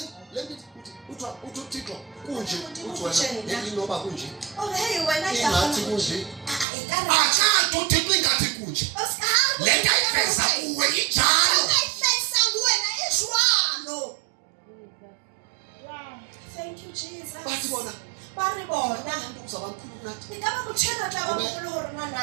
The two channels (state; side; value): drops out; left; at 6.7 s